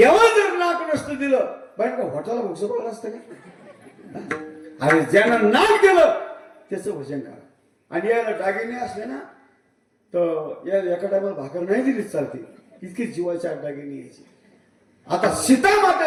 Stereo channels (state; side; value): identical; both; correlation 1.00